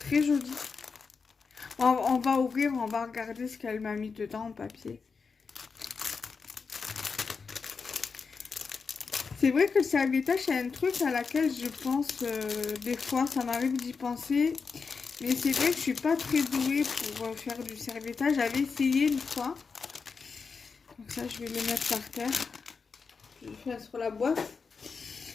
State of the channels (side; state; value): right; quieter; 5.1 dB